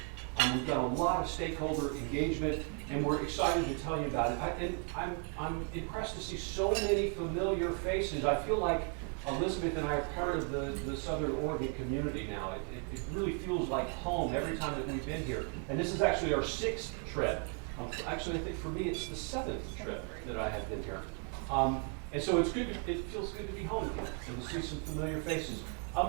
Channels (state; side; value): quieter; left; 39.5 dB